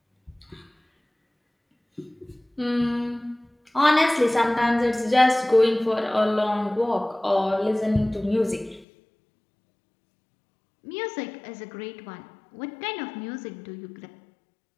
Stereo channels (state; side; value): drops out; right; at 8.8 s